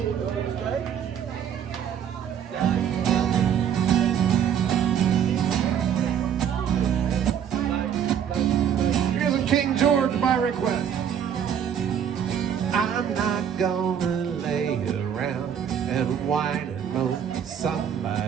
Here's a King George by request. I'm not gonna lay around and whine and moan.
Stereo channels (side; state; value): left; quieter; 8.7 dB